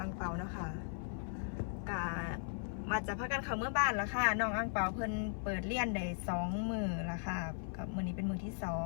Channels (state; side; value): silent; right; 53 dB below the other